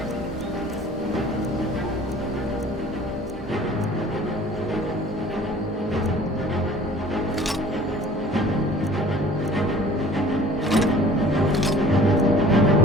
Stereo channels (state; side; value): normal; both; correlation 0.49